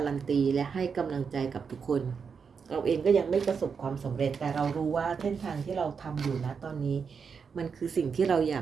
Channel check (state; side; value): quieter; left; 6.0 dB